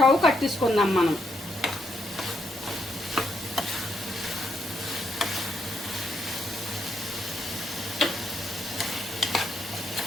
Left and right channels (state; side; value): normal; both; correlation 0.78